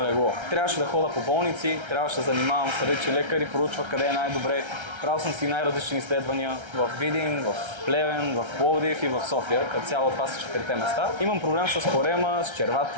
легло. Трябваше да хода по болници, трябваше да занимавам с различни лекари, проучвах къде е най-добре. Правил съм си най-различни изследвания в Видин, в Плевен, в Пловдив и в София, като цяло това са 4-те места. Имам проблем с корема, с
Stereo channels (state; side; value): late; left; 1.3 ms